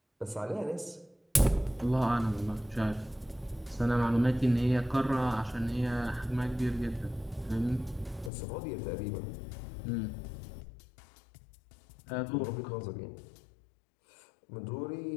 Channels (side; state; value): right; drops out; at 8.3 s